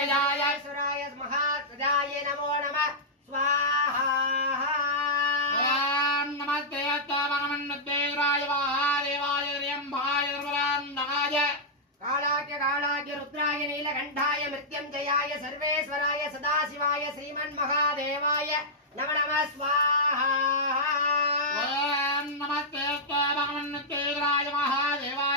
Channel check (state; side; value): normal; both; correlation -0.09